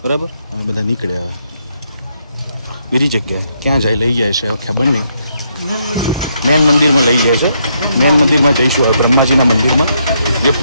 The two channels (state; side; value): inverted; both; correlation -0.76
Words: બરાબર. અમે બધા નીકળ્યા. હવે બીજી જગ્યાએ ક્યાં જાય લઈ જાય છે હવે ખબર નહીં. મેન મંદિરમાં લઈ જાય છે. મેન મંદિરમાં જઈશું હવે બ્રહ્માજીના મંદિરમાં જે